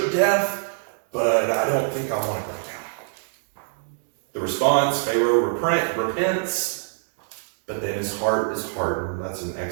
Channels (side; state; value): left; silent; digital silence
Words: death, but I don't think I want to go down. The response, Pharaoh repents, but then his heart is hardened. That's in